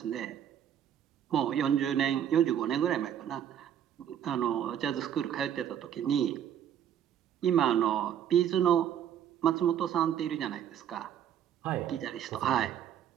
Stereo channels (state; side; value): quieter; left; 9.7 dB